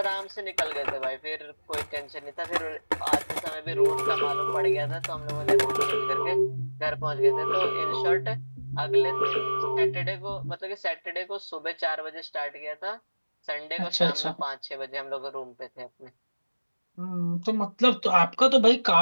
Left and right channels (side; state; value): both; inverted; correlation -1.00